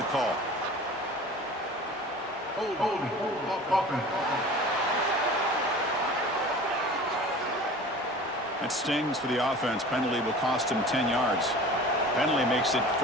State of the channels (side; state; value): both; normal; correlation 0.41